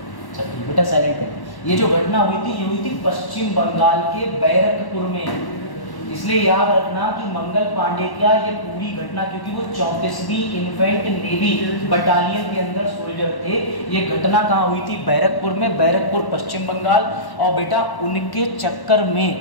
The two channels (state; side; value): late; right; 1.1 ms